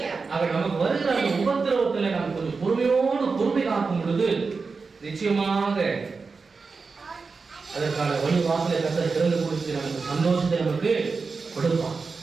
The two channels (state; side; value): quieter; left; 4.6 dB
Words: ஆக நமக்கு வருகிற அந்த உபத்திரவத்துல நம்ம கொஞ்சம் பொறுமை காக்கும் பொழுது நிச்சயமாக அதற்கான வழி வாசலை கர்த்தர் திறந்து கொடுத்து நமக்கு சந்தோஷத்தை நமக்கு கொடுப்பான்.